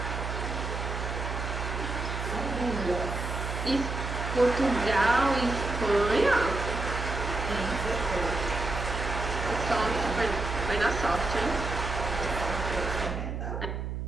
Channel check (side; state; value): right; noise; hum, 4 dB below the sound